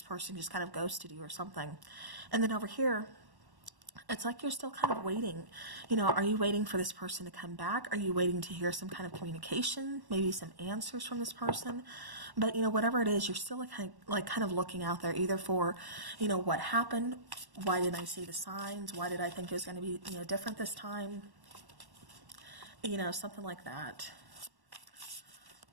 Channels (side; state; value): left; late; 1.1 ms